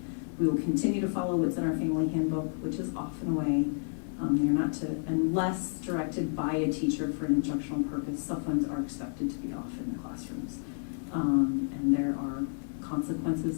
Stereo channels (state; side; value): silent; right; digital silence